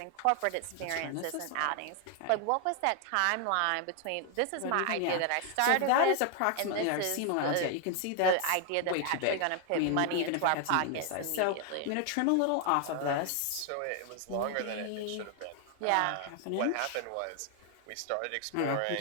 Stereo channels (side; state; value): both; different; correlation 0.00